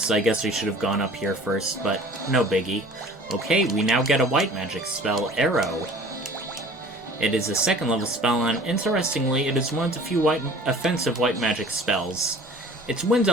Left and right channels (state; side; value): normal; both; correlation 0.46